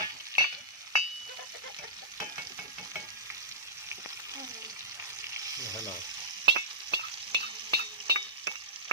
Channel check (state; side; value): normal; both; correlation -0.18